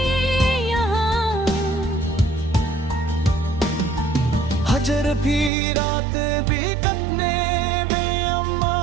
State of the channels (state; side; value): drops out; left; at 5.5 s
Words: यहाँ। हजर भी रात भी कटने बेअम्मा